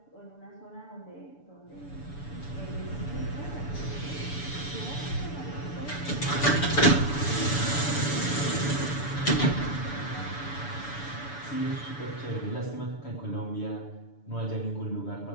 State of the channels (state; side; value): late; right; 6.9 ms